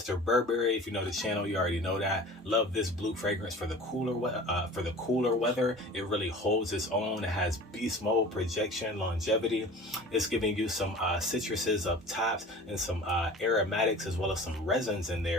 Burberry. If you know the channel, you already know that. Love this blue fragrance for the cooler weather. It really holds its own. It has beast mode, projection, longevity. It's giving you some citruses up tops and some aromatics, as well as some resins in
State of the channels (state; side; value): normal; both; correlation 0.41